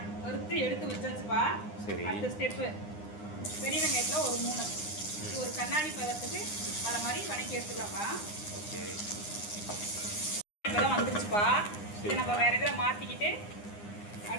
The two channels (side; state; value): right; late; 9.8 ms